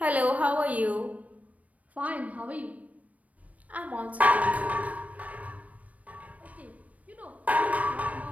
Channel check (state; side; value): late; left; 0.069 ms